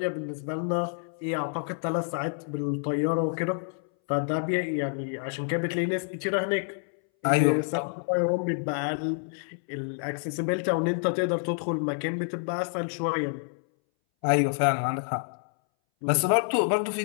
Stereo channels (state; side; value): silent; right; 59 dB below the other